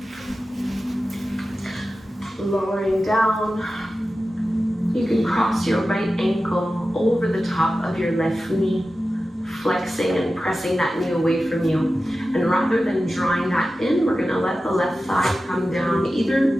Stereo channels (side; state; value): both; normal; correlation 0.94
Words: lowering down. You can cross your right ankle over the top of your left knee, flexing and pressing that knee away from you. And rather than drawing that in, we're gonna let the left thigh come down either